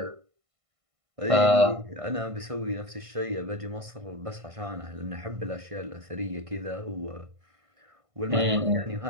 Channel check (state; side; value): late; left; 1.5 ms